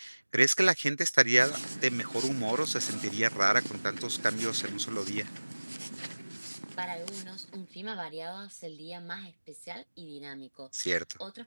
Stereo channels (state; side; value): inverted; both; correlation -1.00